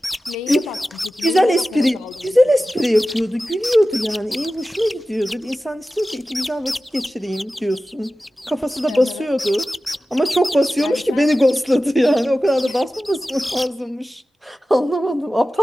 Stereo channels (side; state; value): both; normal; correlation 0.95